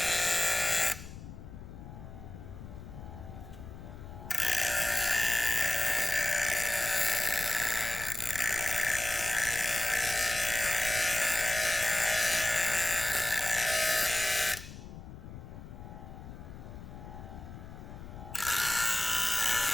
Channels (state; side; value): noise; left; rumble, 13 dB below the sound